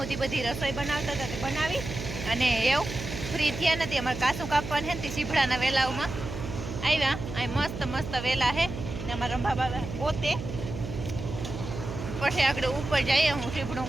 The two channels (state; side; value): noise; right; hum, 8 dB below the sound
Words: બધી રસોઈ બનાવતા હતા તે બનાવી અને એવું ફ્રી થયા નથી. અમારે કાસું કાપવાનું છે ને તે સીભડાના વેલાઓમાં આવ્યા. અહીં મસ્ત મસ્ત વેલા છે ને અમારા રંભા પોતે પછી આગળ ઉપર જઈએ હું સીભડું